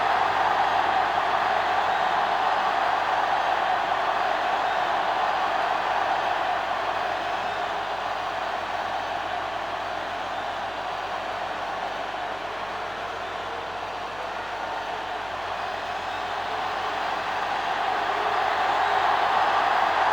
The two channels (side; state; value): right; noise; hum, 21 dB below the sound